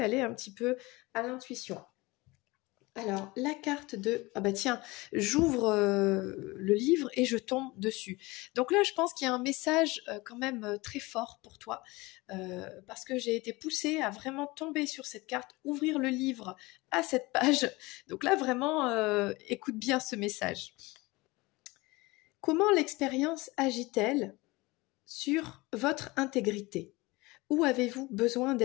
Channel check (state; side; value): quieter; right; 22.5 dB